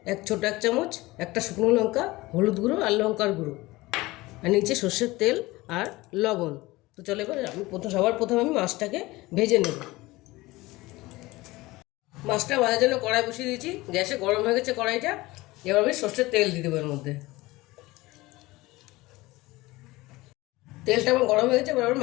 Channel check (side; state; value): right; quieter; 20.2 dB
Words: ছোট এক চামচ, একটা শুকনো লঙ্কা, হলুদ গুঁড়ো আর লঙ্কার গুঁড়ো, আর নিচে সর্ষের তেল আর লবণ। তো চলো এবার আমি সবার প্রথমে আমি মাছটাকে ভেজে নেব। মাছটা ভাজার জন্য কড়াই বসিয়ে দিয়েছি, গ্যাসে গরম হয়ে গেছে কড়াইটা। এবার আমি সর্ষের তেল দিয়ে দেবো এর মধ্যে। তেলটা আমার গরম হয়ে গেছে, এবার